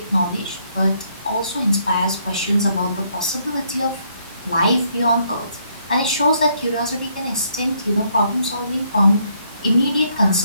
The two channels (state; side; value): inverted; both; correlation -0.71